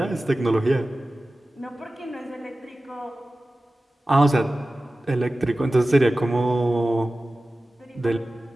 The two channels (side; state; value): both; normal; correlation 0.96